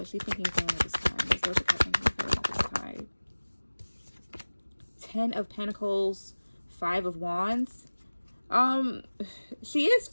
is she thinking and feeling at this time? What is Doja Cat thinking and feeling at this time? 10 of Pentacles, 5 of Wands. She is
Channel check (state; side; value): inverted; both; correlation -1.00